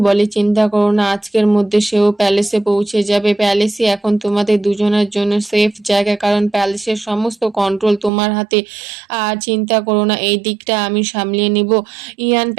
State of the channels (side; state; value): left; drops out; at 8.1 s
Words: বলে, চিন্তা করো না, আজকের মধ্যে সেও প্যালেসে পৌঁছে যাবে। প্যালেসই এখন তোমাদের দুজনের জন্য সেফ জায়গা, কারণ প্যালেসের সমস্ত কন্ট্রোল তোমার হাতে। আর চিন্তা করো না, এই দিকটা আমি সামলিয়ে নিব। ইয়ান